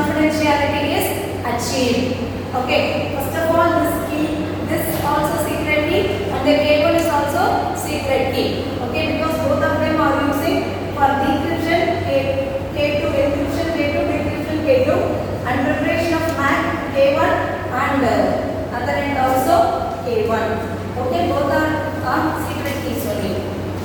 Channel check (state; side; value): identical; both; correlation 1.00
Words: is achieved. Okay? First of all, this key, this also secret key, and the cable is also secret key. Okay? Because both of them are using for decryption K2 encryption K2 decryption K2 and preparation of math K1 and other end also K1. Okay? Both are secret keys only.